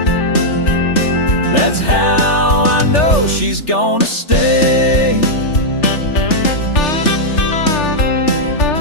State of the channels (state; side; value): late; right; 3.4 ms